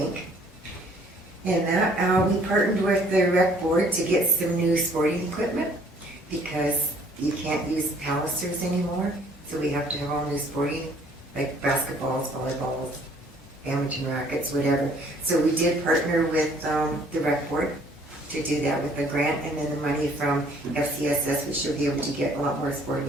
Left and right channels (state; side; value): normal; both; correlation 0.59